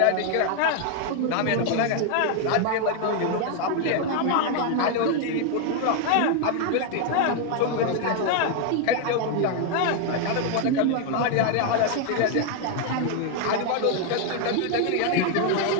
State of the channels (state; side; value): different; both; correlation 0.00